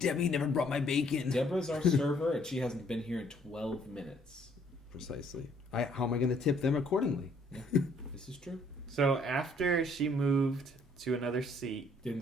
never brought my bacon. Deborah's our server, and she hasn't been here in 12 minutes. Precisely. How am I going to tip them accordingly? Yeah, this is true. So after she moved to another seat, Didn't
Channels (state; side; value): normal; both; correlation 0.64